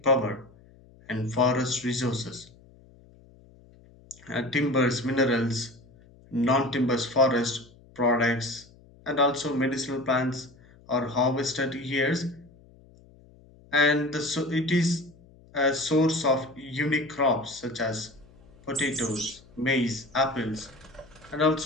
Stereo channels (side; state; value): left; noise; hum, 26 dB below the sound